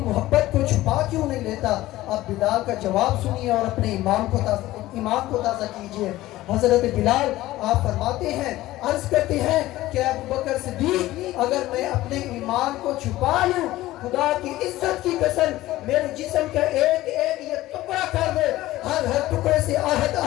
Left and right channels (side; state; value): right; quieter; 16.4 dB